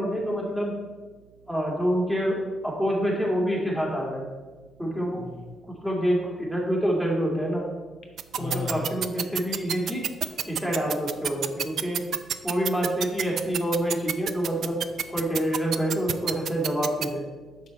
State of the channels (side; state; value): right; noise; hum, 28 dB below the sound